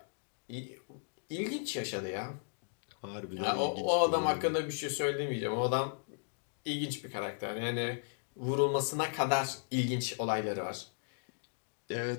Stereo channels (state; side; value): silent; right; digital silence